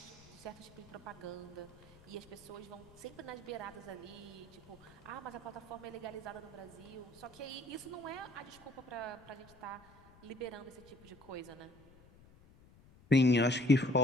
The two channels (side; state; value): left; noise; rumble, 24 dB below the sound